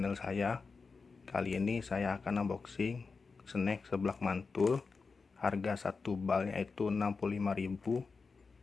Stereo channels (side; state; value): right; quieter; 4.6 dB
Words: saya. Kali ini saya akan unboxing snack seblak mantul. Harga satu balnya itu 65.000